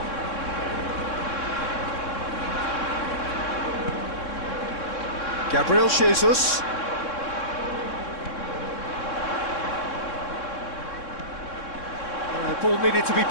Gabriel Jesus. The ball needed to be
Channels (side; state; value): right; late; 3.6 ms